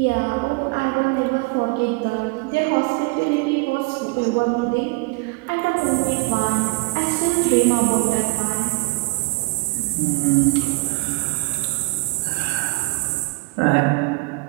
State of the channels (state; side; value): quieter; left; 25.1 dB